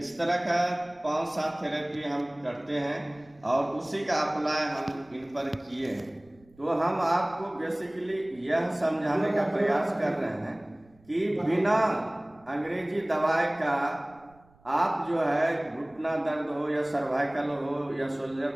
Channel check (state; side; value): noise; right; rumble, 29 dB below the sound